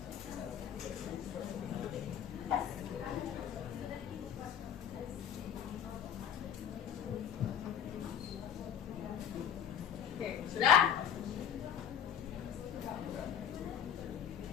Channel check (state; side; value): quieter; right; 8.8 dB